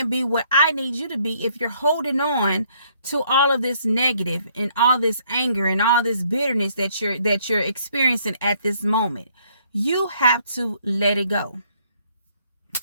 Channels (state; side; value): inverted; both; correlation -0.65